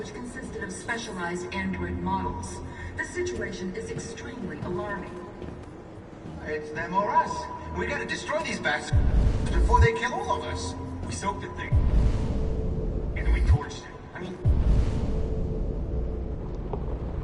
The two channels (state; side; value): identical; both; correlation 1.00